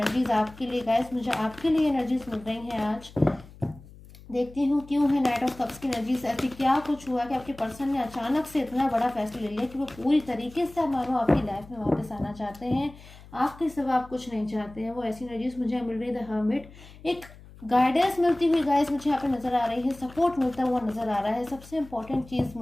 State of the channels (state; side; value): noise; left; hum, 20 dB below the sound